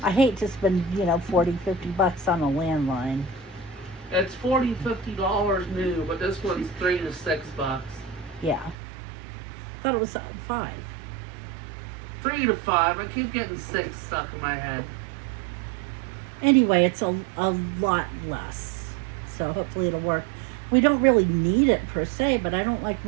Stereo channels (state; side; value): drops out; left; at 8.8 s